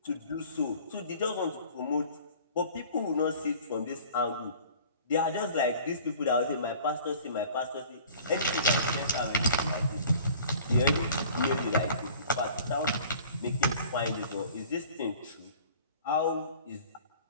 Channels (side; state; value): both; inverted; correlation -0.47